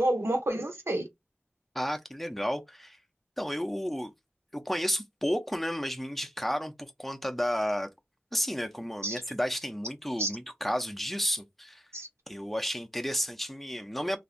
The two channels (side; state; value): both; normal; correlation 0.90